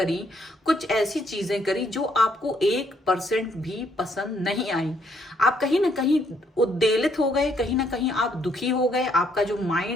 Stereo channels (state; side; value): normal; both; correlation 0.70